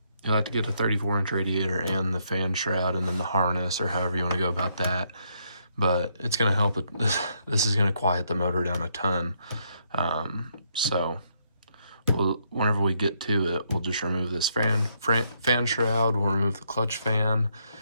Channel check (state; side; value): inverted; both; correlation -0.75